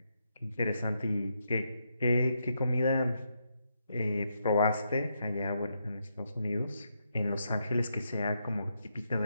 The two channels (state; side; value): inverted; both; correlation -0.80